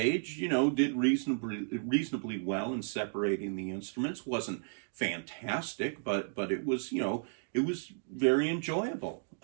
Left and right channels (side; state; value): left; silent; digital silence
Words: did reasonably well in separating the instruments. Wasn't fantastic, but it was, it was very enjoyable.